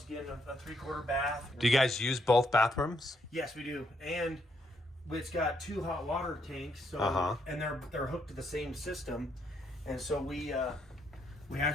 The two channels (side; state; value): both; normal; correlation 0.75